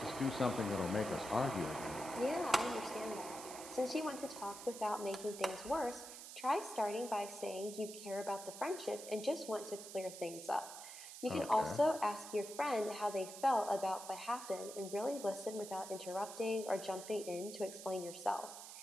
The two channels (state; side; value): noise; right; hiss, 11 dB below the sound